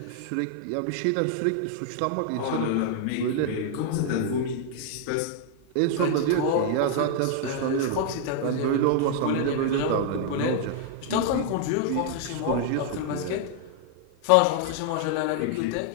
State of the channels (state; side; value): different; both; correlation 0.00